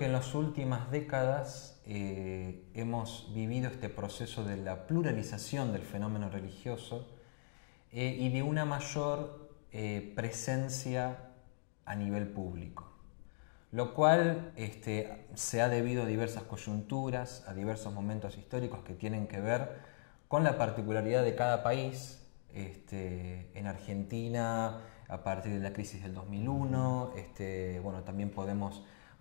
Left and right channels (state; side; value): silent; right; digital silence